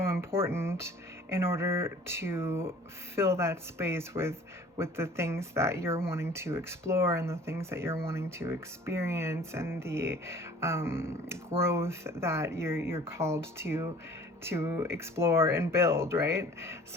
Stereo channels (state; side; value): normal; both; correlation 0.49